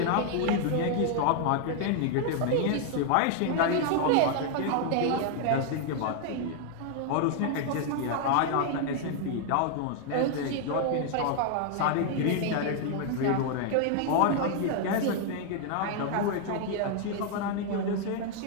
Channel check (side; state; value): both; different; correlation 0.00